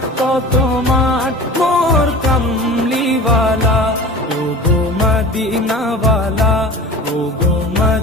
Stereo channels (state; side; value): normal; both; correlation 0.37